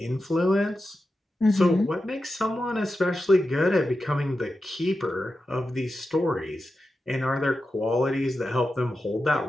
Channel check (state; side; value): normal; both; correlation 0.91